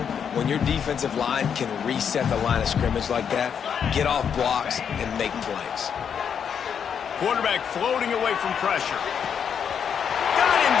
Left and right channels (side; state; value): right; quieter; 7.6 dB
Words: When your defensive line can reset the line of scrimmage like that, get off blocks and make plays. Quarterback floating away from pressure. Got him